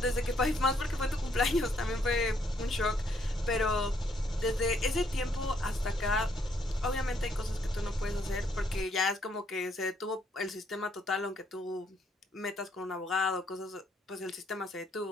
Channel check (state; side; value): normal; both; correlation 0.70